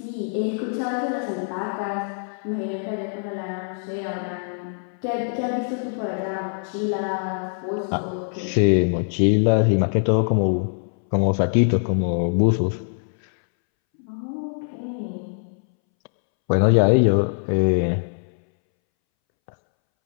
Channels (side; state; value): right; silent; 63 dB below the other